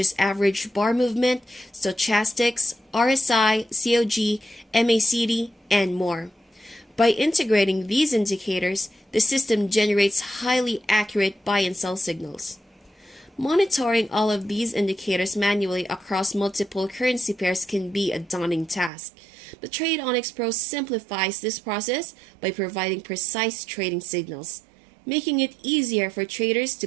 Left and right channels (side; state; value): left; drops out; at 18.9 s